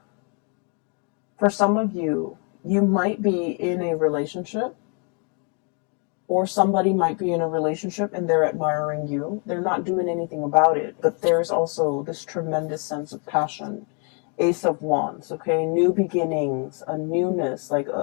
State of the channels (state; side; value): quieter; right; 37.8 dB